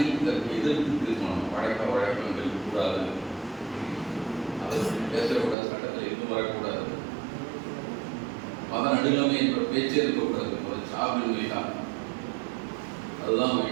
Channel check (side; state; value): left; drops out; at 5.6 s